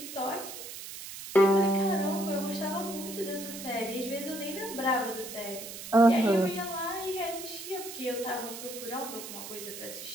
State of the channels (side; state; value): right; noise; hiss, 10 dB below the sound